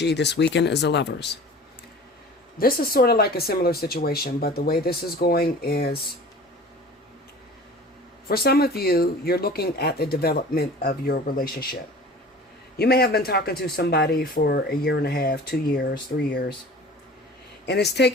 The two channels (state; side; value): normal; both; correlation 0.41